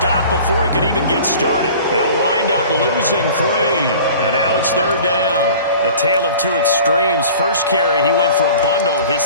before he could even get started. They'll wind up losing 3. And now it's third down. A tale of two extremes. First carry, he went for a bundle. His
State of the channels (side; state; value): both; inverted; correlation -0.44